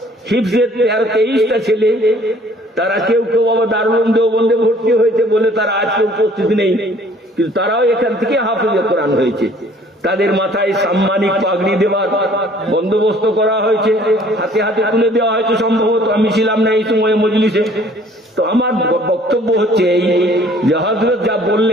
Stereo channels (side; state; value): both; normal; correlation 0.56